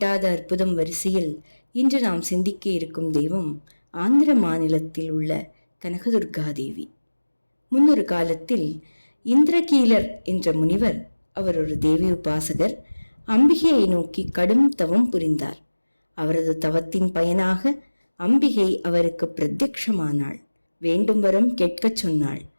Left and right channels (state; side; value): inverted; both; correlation -1.00